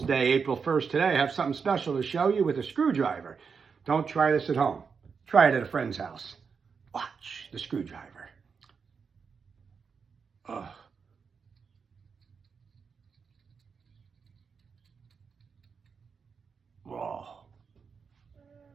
Day, April 1st today. I have something special to show you with a screwdriver. Don't try this at home. Try it at a friend's house. Watch the screwdriver. Oh. Whoa.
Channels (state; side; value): quieter; left; 5.8 dB